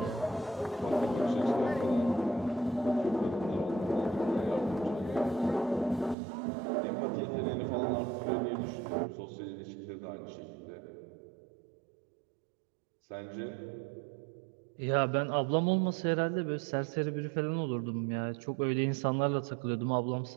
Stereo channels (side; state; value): left; drops out; at 6.2 s